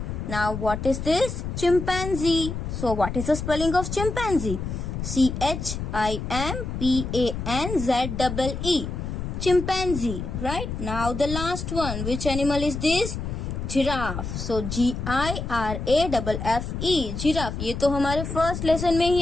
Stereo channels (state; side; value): noise; left; rumble, 5 dB below the sound